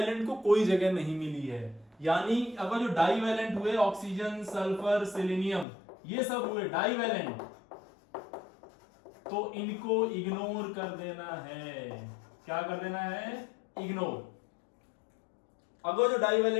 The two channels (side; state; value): right; drops out; at 5.7 s